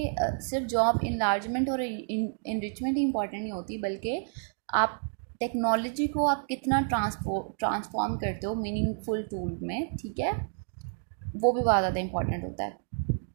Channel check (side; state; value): left; silent; digital silence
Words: सिर्फ जॉब इनलार्जमेंट और इनरिचमेंट ही इंपॉर्टेंट नहीं होती, बल्कि आप टेक्नोलॉजी को आप कितना ट्रांसफॉर्म करते हो मीनिंगफुल टूल में। ठीक है। वो भी बहुत ज़्यादा इंपॉर्टेंट होता है।